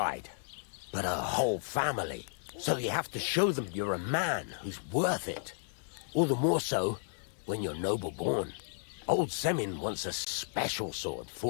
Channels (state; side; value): silent; right; digital silence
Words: but a whole family. So you have to show them you're a man who's worth it. All the more so when you're noble-born. Old Semin wants a special sword